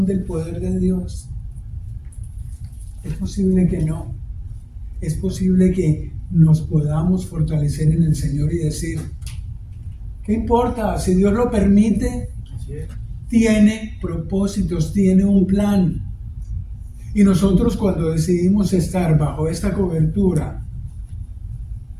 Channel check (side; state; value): both; identical; correlation 1.00